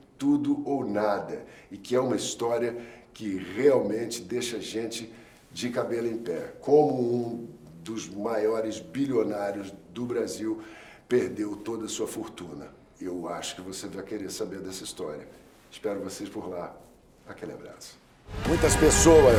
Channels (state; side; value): identical; both; correlation 1.00